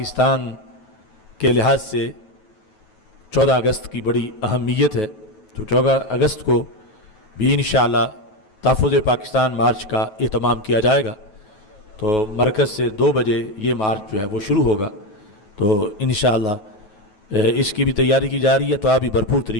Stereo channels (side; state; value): right; late; 9.3 ms